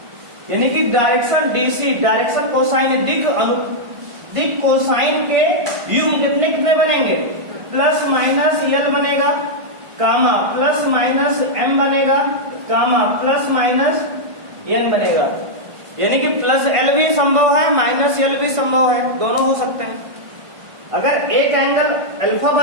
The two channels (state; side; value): late; left; 1.5 ms